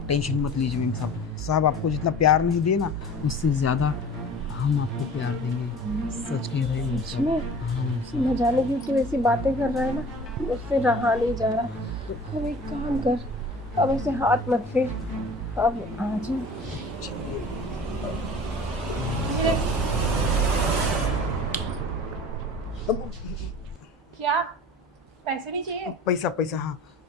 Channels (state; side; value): normal; both; correlation 0.43